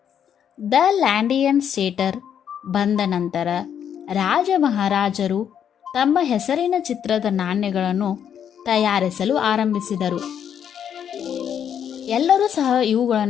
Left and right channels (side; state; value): right; quieter; 8.7 dB